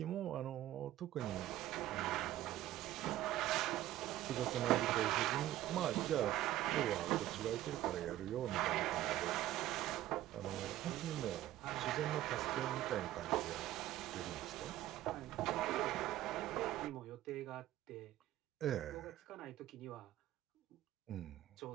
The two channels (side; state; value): left; quieter; 14.2 dB